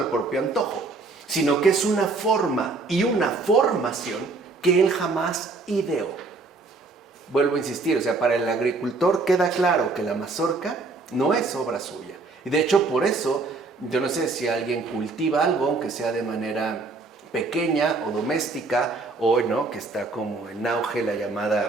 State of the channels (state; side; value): quieter; left; 3.8 dB